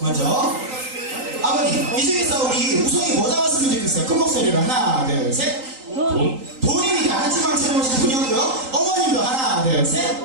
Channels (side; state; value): left; late; 3.9 ms